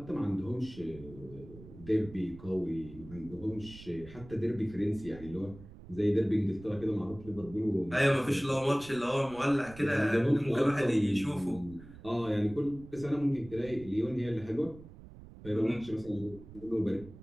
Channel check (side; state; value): right; noise; rumble, 17 dB below the sound